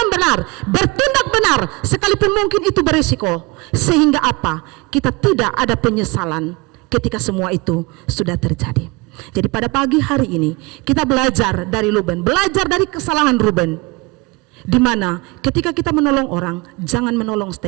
benar, bertindak benar, sekalipun mungkin itu berisiko. Sehingga apa? Kita tidak ada penyesalan ketika semua itu sudah terjadi. Jadi pada pagi hari ini kita belajar dari Ruben, belajar dari kesalahan Ruben. Di mana ketika kita menolong orang, jangan menolong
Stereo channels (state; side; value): quieter; left; 25.0 dB